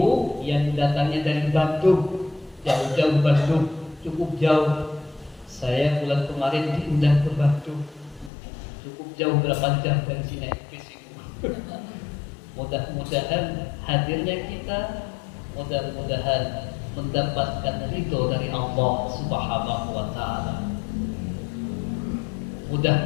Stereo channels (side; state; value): right; drops out; at 8.3 s